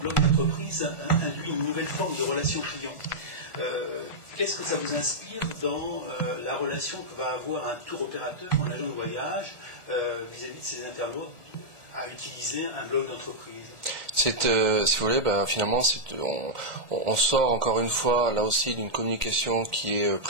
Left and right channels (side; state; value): left; late; 1.4 ms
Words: d'entreprise induit une nouvelle forme de relation client. Qu'est-ce que ça vous inspire dans la relation que va avoir un tour opérateur, un agent de voyage, vis-à-vis de ses internautes, à utiliser un blog d'entreprise? Si vous voulez, finalement, on sort encore une fois, là aussi, d'une communication qui est